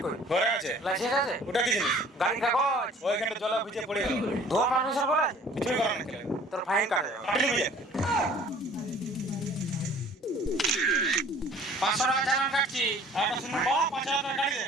কই? ঘরে আছে। লাইসেন্স আছে? ওটা কি জিনিস? গাড়ি কাগজ? ওইখানে জলা ভিজে পড়ে গেল। ধোয়া মানুষের বলা আছে? কিছুই করার নেই। তোর ফাইন কাটে যাবে। আপনি বুঝে 500 টাকা চালান কাটছি। একটা শুনুন বাবা 5000 টাকা গাড়ি দে।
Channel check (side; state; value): both; normal; correlation 0.51